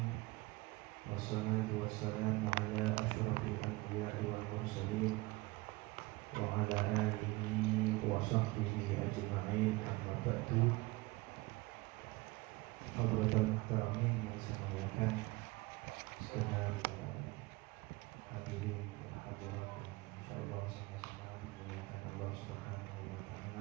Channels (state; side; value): quieter; left; 22.2 dB